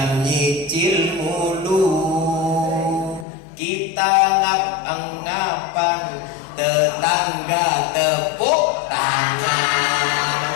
nyicil mulu. Kita ngap-ngapan, tetangga tepuk tangan.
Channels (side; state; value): right; drops out; at 3.2 s